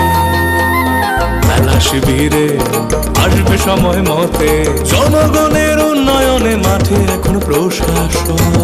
মেলা শিবিরে আসবে সময় মতে, জনগণের উন্নয়নে মাঠে এখন প্রশাসন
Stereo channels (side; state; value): both; identical; correlation 1.00